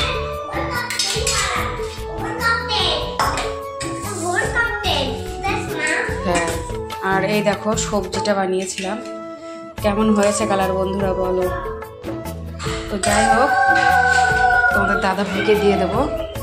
হ্যাঁ, আর এই দেখো সবজিটা বানিয়েছিলাম, কেমন হয়েছে কালার বন্ধুরা বলো। তো যাই হোক, তোমাদের দাদা ভাইকে দিয়ে দেবো,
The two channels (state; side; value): identical; both; correlation 1.00